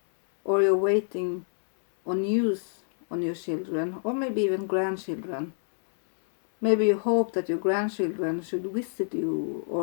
or you're waiting on news on your children, or maybe even grandchildren. Maybe you hope that your grandchildren should visit you,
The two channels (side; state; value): right; silent; digital silence